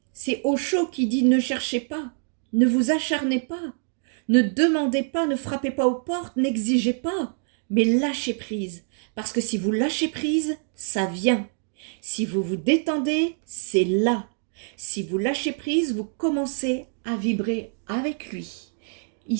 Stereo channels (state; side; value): silent; left; 55 dB below the other